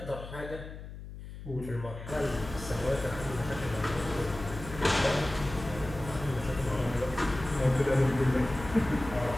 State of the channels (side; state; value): left; noise; hum, 12 dB below the sound